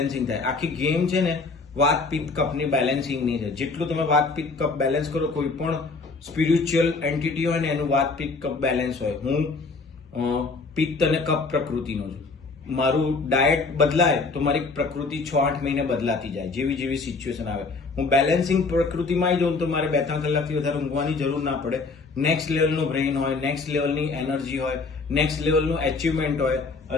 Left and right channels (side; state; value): right; quieter; 4.1 dB